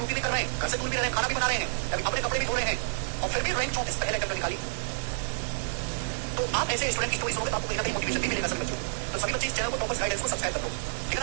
भी कर रहे हैं, घर से दूर भी रह रहे हैं, खाना भी बना रहे हैं, अभी अपने कपड़े भी धो रहे हैं, और फिर भी रैंक 34 पहले अटेम्प्ट में निकाली। तो आप ऐसे स्टूडेंट की स्टोरी सुनोगे तो आपको कहीं ना कहीं मोटिवेशन भी मिलेगा सभी बच्चों। तो सभी बच्चे इस चैनल को टॉपर्स गाइडेंस को सब्सक्राइब कर लो, ठीक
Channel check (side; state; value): left; silent; digital silence